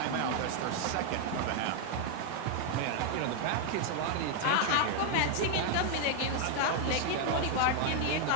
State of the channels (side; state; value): both; different; correlation 0.00